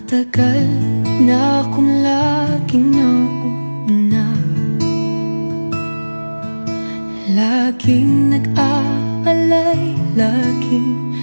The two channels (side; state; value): both; inverted; correlation -1.00